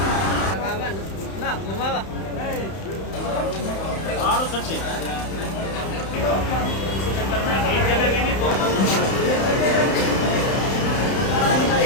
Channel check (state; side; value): late; right; 31 ms